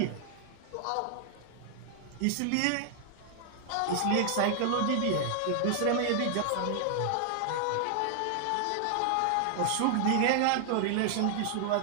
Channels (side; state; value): both; different; correlation 0.00